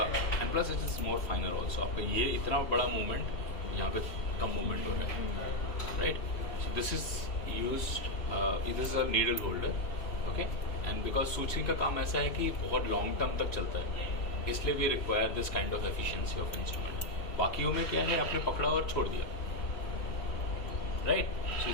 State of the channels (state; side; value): late; right; 3.0 ms